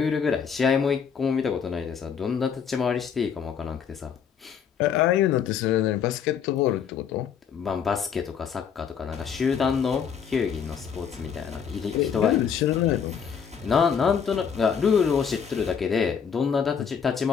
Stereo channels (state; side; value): quieter; right; 7.2 dB